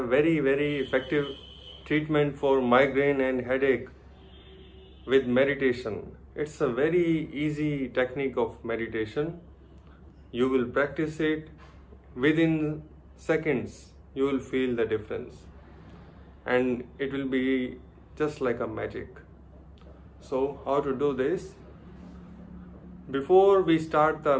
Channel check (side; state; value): both; identical; correlation 1.00